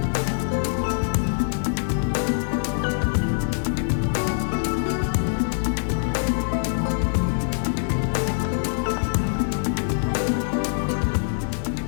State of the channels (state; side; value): silent; right; digital silence